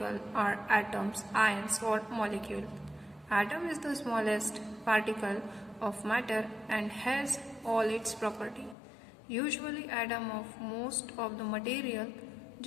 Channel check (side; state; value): right; drops out; at 8.8 s